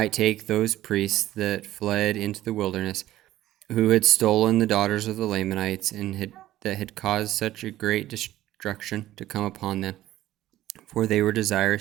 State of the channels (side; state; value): left; quieter; 14.5 dB